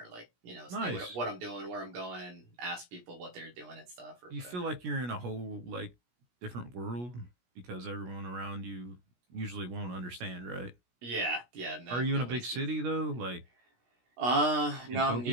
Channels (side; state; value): left; late; 17 ms